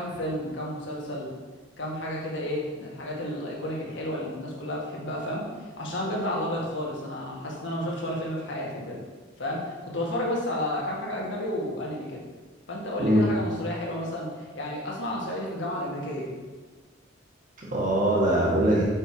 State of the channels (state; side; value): normal; both; correlation 0.37